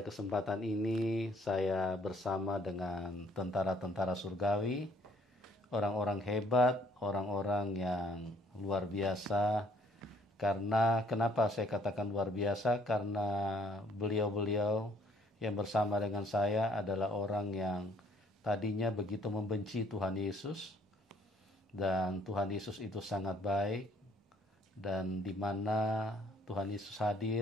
kesempatan ini saya bersama dengan tentara-tentara surgawi, orang-orang hebat, orang-orang yang luar biasa. Karena kenapa saya katakan luar biasa? Karena beliau-beliau yang bersama dengan saya adalah orang yang tadinya begitu membenci Tuhan Yesus. Dan Tuhan Yesus itu sangat baik, dan di mana Tuhan Yesus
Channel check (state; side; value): normal; both; correlation 0.62